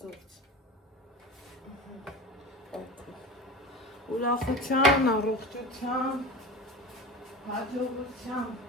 գործ, ուրախության, առողջության, հաջողության,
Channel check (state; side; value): normal; both; correlation 0.31